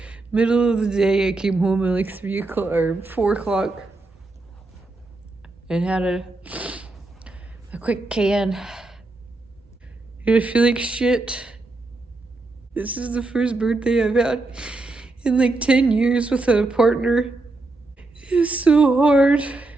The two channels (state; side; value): quieter; left; 3.1 dB